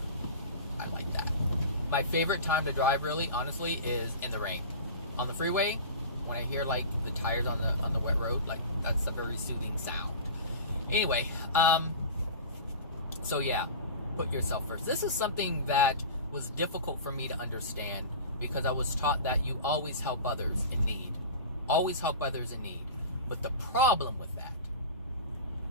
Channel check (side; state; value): both; inverted; correlation -0.33